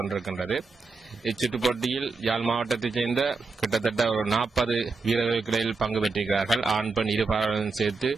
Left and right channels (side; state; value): left; quieter; 4.3 dB